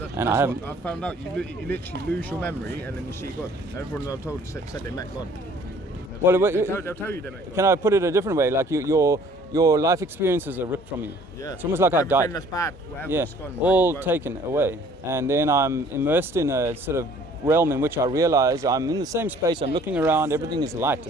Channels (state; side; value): normal; both; correlation 0.55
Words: And I found out you literally lose your memory and then you see God. Everyone I've told said they met God. They'll tell you they met God. Can I put it a different way? Like your life experiences are ripped from you. Yeah. It's almost like I died. Everything that's bad, whatever's gone. All taken away. And then I'm immersed in a sort of realm in which I realize I'm in the same space, I'm looking around, everything is light